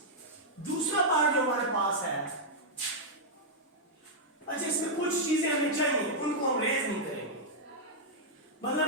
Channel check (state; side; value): normal; both; correlation -0.06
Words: दूसरा पार्ट जो हमारे पास है, अच्छा इसमें कुछ चीजें हमें चाहिए, उनको हम रेज नहीं करेंगे, मतलब